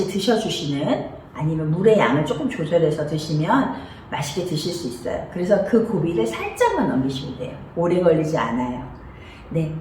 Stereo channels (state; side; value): identical; both; correlation 1.00